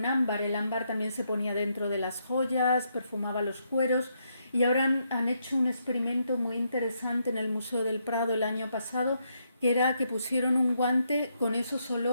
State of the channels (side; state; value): both; inverted; correlation -0.77